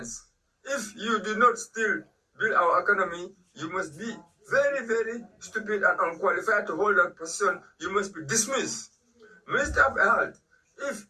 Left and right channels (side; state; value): both; identical; correlation 1.00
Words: if you do not still build our economy, you must be very, very stupid and unqualified to hold that position. You must be dismissed. Minister of Health, if